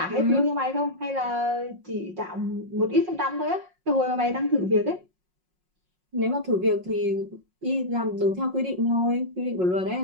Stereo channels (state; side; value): late; left; 5.5 ms